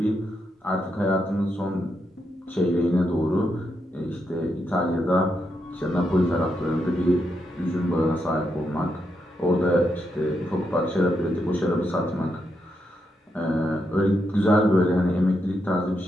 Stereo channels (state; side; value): normal; both; correlation 0.82